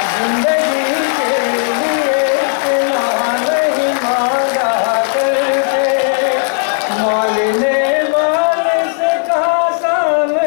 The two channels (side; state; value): right; silent; digital silence